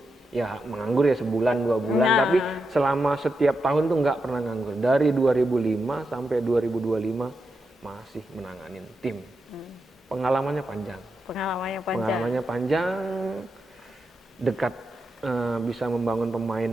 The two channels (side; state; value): both; normal; correlation 0.86